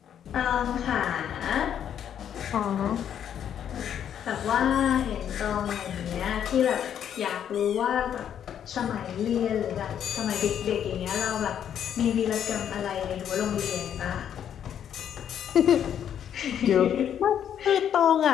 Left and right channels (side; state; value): right; quieter; 9.3 dB